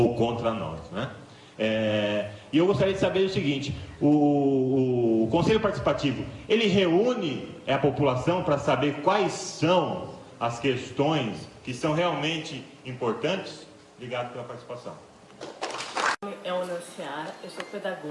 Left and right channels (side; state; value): both; identical; correlation 1.00